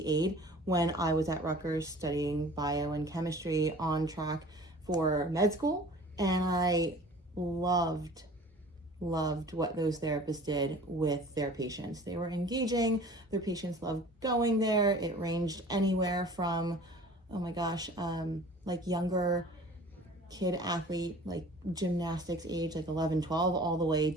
aide when I was at Rutgers studying bio and chemistry on track for med school. And I loved what those therapists did with their patients. They were engaging, their patients loved going there. It ranged anywhere from, like younger kid athlete, like gymnastics age, like 11, 12, all the way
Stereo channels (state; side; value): normal; both; correlation 0.45